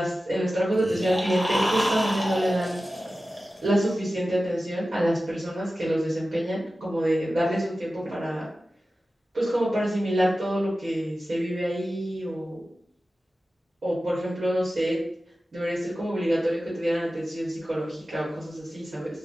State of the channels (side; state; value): both; normal; correlation 0.94